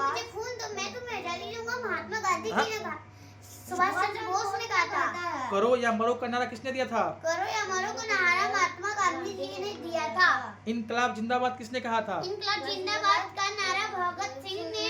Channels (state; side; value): identical; both; correlation 1.00